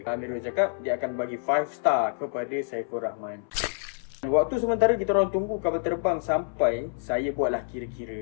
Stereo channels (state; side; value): silent; right; 60 dB below the other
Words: Amirul cakap dia akan bagi 5 star kepada Saiful Rahman. Waktu sementara kita orang tunggu kapal terbang sampai, saya buatlah